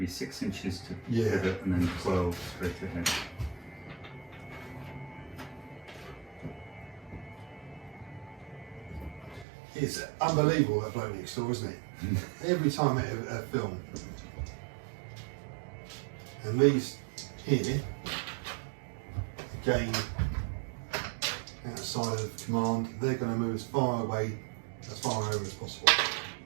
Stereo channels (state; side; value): drops out; left; at 9.5 s